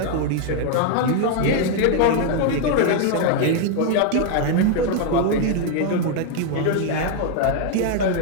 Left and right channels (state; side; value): different; both; correlation 0.00